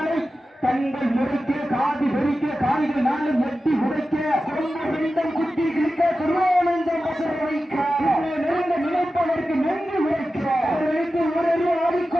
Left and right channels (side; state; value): both; normal; correlation 0.93